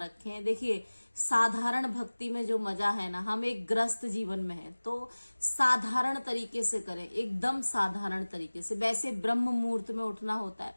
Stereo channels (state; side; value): inverted; both; correlation -1.00